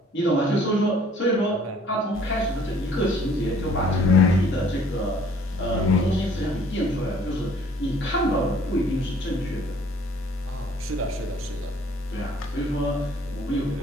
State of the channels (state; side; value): normal; both; correlation 0.57